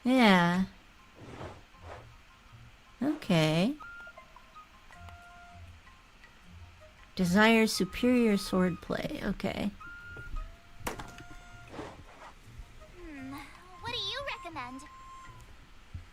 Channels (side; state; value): both; identical; correlation 1.00